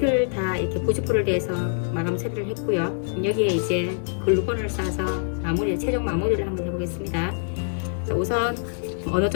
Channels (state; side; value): silent; right; digital silence